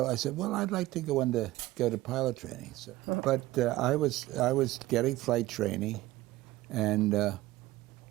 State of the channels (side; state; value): left; quieter; 17.2 dB